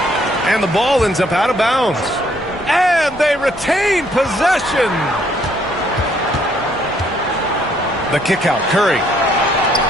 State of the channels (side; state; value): both; normal; correlation 0.67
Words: And the ball ends up out of bounds. And they retain possession. The kick out, Curry.